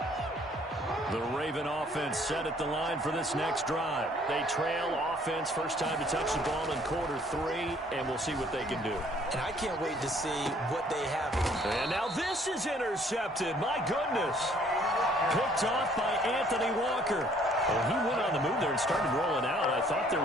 The Raven offense set at the line for this next drive. They trail offense, first time to touch the ball in quarter 3, and we'll see what they can do. And I can't wait to see what they have. And now this is intercepted. My goodness. Picked off by Anthony Walker. Well, he went on the move there and started rolling out. I thought there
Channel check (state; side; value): normal; both; correlation 0.60